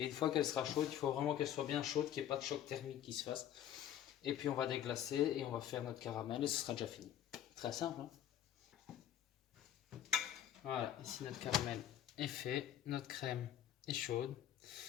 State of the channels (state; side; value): quieter; right; 10.7 dB